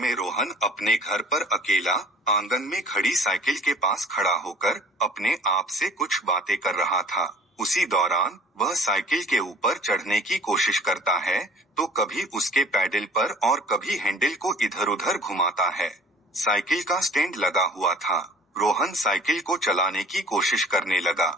रोहन अपने घर पर अकेला आंगन में खड़ी साइकिल के पास खड़ा होकर अपने आप से कुछ बातें कर रहा था। उसी दौरान वह साइकिल के ऊपर चढ़ने की कोशिश करता है तो कभी उसके पैडल पर और कभी हैंडल को इधर उधर घुमाता है। साइकिल का स्टैंड लगा हुआ था। रोहन साइकिल को चलाने की कोशिश करने लगा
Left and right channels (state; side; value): normal; both; correlation 0.48